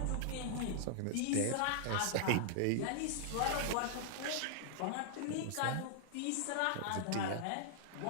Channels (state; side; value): different; both; correlation -0.01